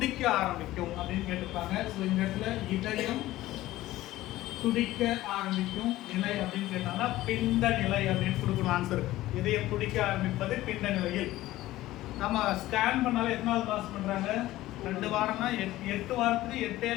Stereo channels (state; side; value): quieter; right; 16.1 dB